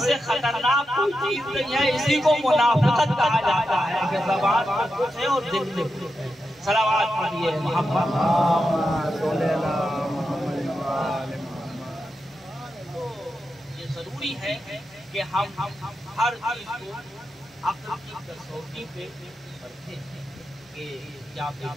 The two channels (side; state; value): both; normal; correlation 0.88